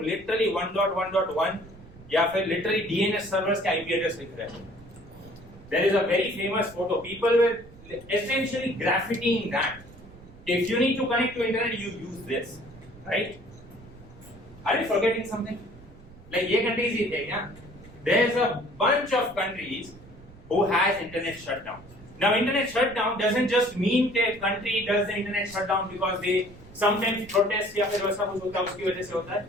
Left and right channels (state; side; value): noise; right; rumble, 20 dB below the sound